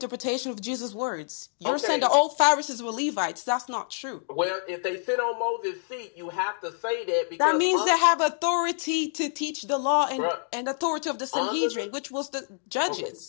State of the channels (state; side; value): silent; right; 58 dB below the other